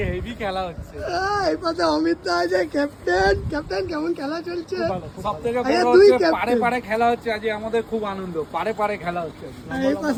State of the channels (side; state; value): both; identical; correlation 1.00